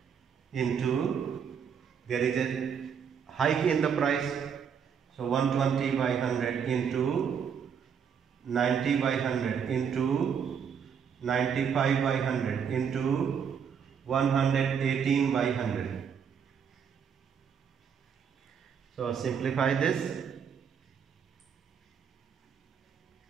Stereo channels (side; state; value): left; quieter; 7.3 dB